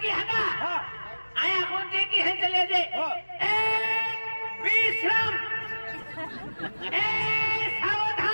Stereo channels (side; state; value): both; inverted; correlation -1.00